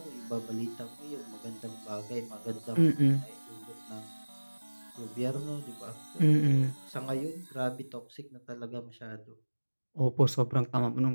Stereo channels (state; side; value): inverted; both; correlation -1.00